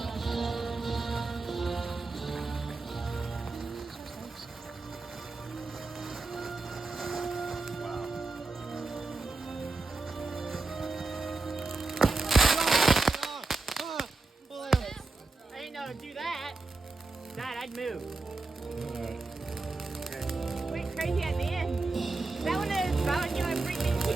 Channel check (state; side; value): quieter; left; 3.5 dB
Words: I didn't know to do that. Dad, I'd move. Went crazy at the end. That one is about to get my freaking he